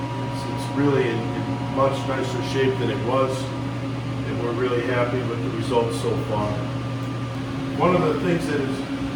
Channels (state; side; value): identical; both; correlation 1.00